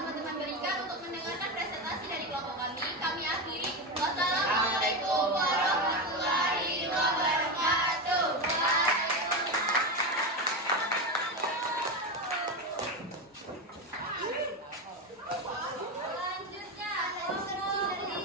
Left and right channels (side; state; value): both; normal; correlation 0.15